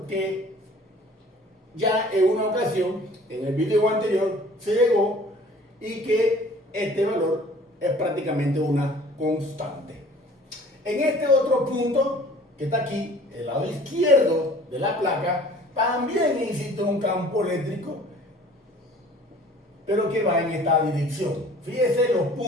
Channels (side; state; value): both; normal; correlation 0.50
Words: que ya en una ocasión, en el video anterior, se llegó, y que este valor es prácticamente una constante. En este otro punto, que está aquí, el lado izquierdo de la placa, también existe un campo eléctrico, pero que va en esta dirección. Fíjese los